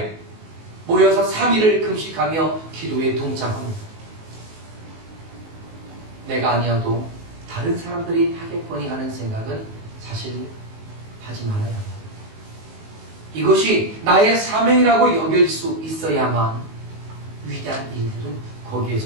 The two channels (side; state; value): left; late; 19 ms